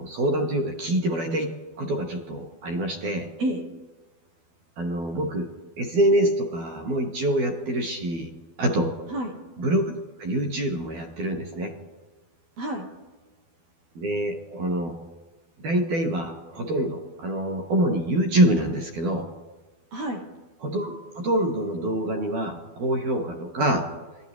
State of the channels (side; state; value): left; late; 12 ms